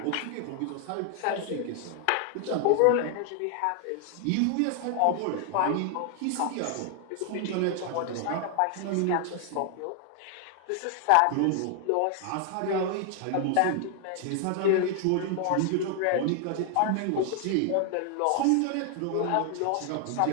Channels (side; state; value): both; different; correlation 0.00